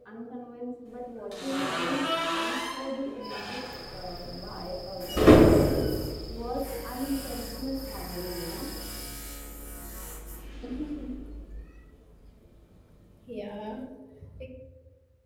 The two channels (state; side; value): identical; both; correlation 1.00